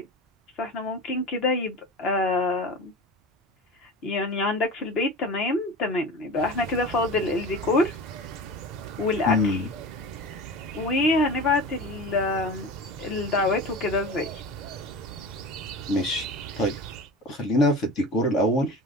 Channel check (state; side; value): normal; both; correlation 0.32